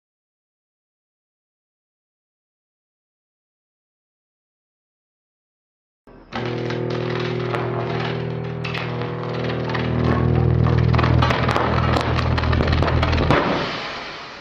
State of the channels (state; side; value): identical; both; correlation 1.00